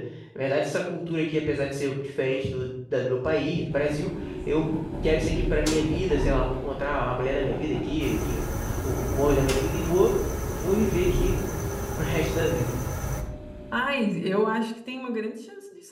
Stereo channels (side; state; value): both; identical; correlation 1.00